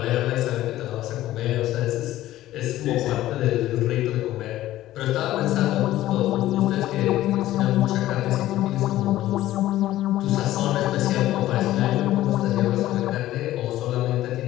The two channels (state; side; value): quieter; right; 14.6 dB